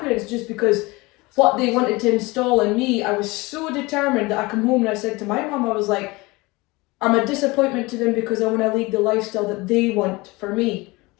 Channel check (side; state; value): right; quieter; 23.2 dB